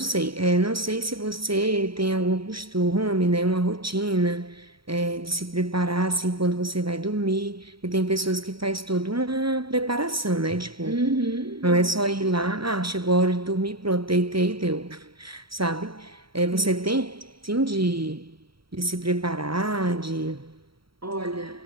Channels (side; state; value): left; late; 0.75 ms